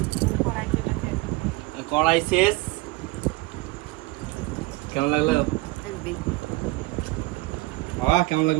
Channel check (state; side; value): quieter; left; 21.0 dB